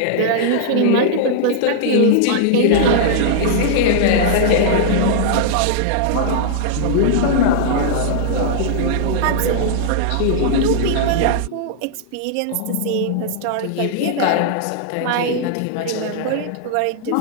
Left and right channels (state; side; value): different; both; correlation -0.01